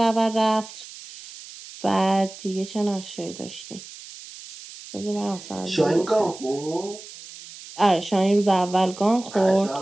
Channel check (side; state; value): right; noise; hiss, 16 dB below the sound